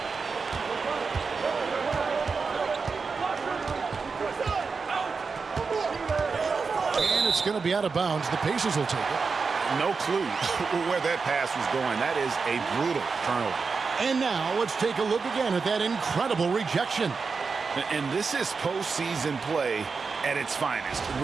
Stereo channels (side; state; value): left; quieter; 4.9 dB